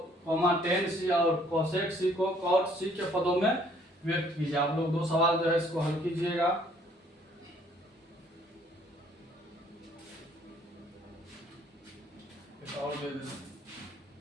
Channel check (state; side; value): normal; both; correlation 0.61